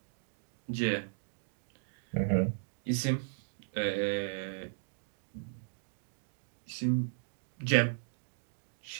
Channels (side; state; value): left; silent; digital silence